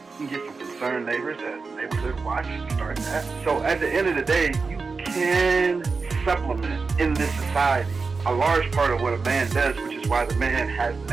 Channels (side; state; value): left; quieter; 4.4 dB